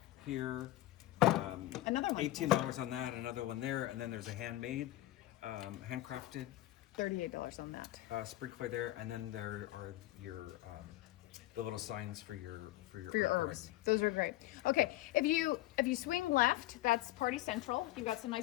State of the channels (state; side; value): quieter; right; 15.9 dB